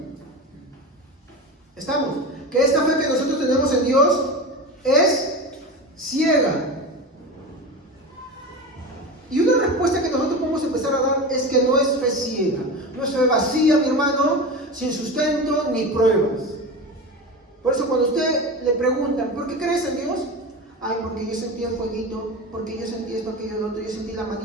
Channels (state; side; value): normal; both; correlation 0.26